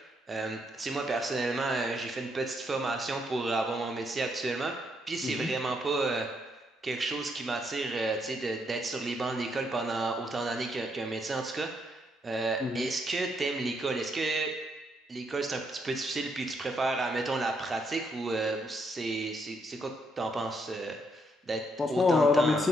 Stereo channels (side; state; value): both; normal; correlation 0.75